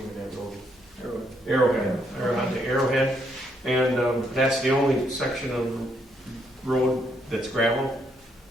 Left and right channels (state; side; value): normal; both; correlation 0.74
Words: of that road? Arrowhead, or onto Arrowhead. And that's the only section of road that's gravel.